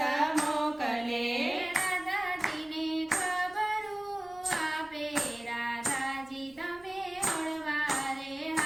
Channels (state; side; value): noise; right; hum, 28 dB below the sound